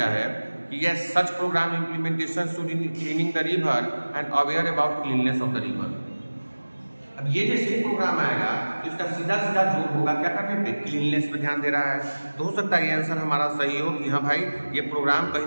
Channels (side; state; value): both; inverted; correlation -1.00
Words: है कि yes such programme implementation should in cleaning the river and aware about cleanness of the river. अब ये जैसे ही प्रोग्राम आएगा तो इसका सीधा जोर होगा क्या करने पे, क्लीननेस पे ध्यान दे रहा है। तो हो सकता है ये आंसर हमारा सही हो कि हाँ भाई ये प्रोग्राम कहीं